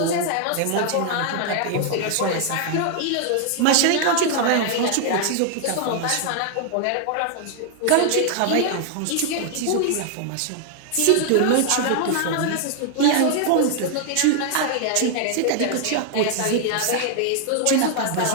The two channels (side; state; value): both; different; correlation 0.00